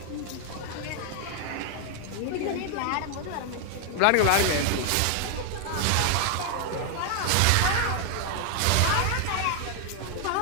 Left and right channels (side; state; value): both; different; correlation 0.00